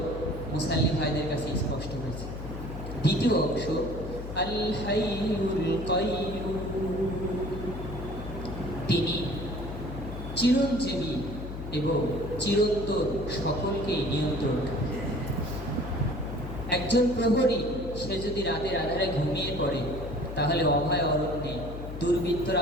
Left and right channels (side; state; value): left; noise; hum, 9 dB below the sound